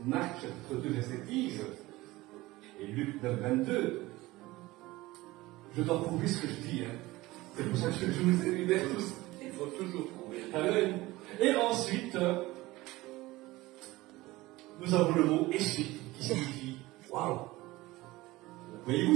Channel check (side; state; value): left; quieter; 19.3 dB